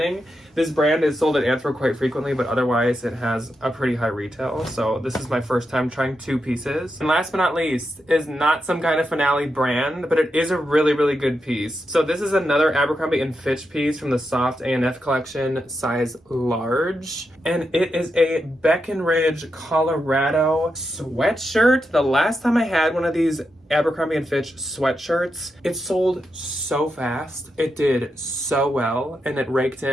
this brand is sold at Anthro quite frequently, but otherwise it has a pretty high retail. So this is my first time trying 2 pieces. And last but not least is not some kind of Finale brand, but it is a really, really good piece. So this is another Abercrombie & Fitch piece from the Soft A&F collection, size large. And it is a Breckenridge, Colorado sweatshirt. The last time I had one of these Abercrombie & Fitch sweatshirts, it sold so fast. It did so well, and it raked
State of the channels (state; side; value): normal; both; correlation 0.86